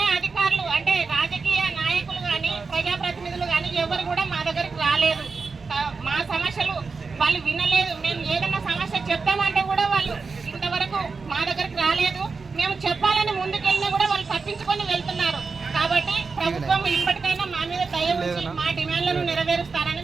అధికారులు అంటే రాజకీయ నాయకులు కానీ ప్రజాప్రతినిధులు కానీ ఎవరు కూడా మా దగ్గరికి రాలేదు. మా సమస్యలు వాళ్ళు వినలేదు. మేము ఏదైనా సమస్య చెప్తామంటే కూడా వాళ్ళు ఇంతవరకు మా దగ్గరికి రాలేదు. మేము చెప్పాలని ముందుకెళ్ళినా కూడా వాళ్ళు తప్పించుకొని వెళ్తున్నారు. కాబట్టి ప్రభుత్వం ఇప్పటికైనా మా మీద దయ ఉంచి మా డిమాండ్లను నెరవేరుస్తారని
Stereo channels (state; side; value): quieter; left; 4.6 dB